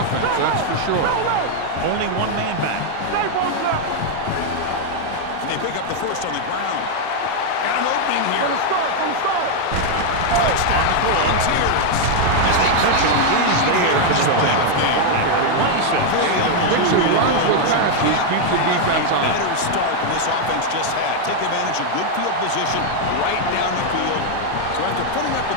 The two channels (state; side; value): different; both; correlation 0.00